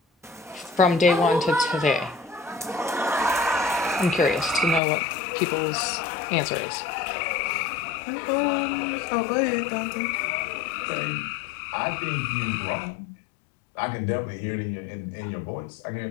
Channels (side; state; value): right; drops out; at 4.8 s